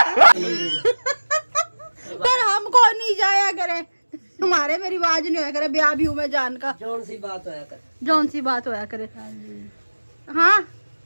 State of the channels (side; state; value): both; inverted; correlation -1.00